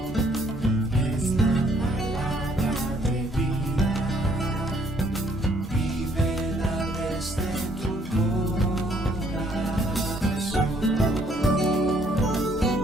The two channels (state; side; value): normal; both; correlation 0.65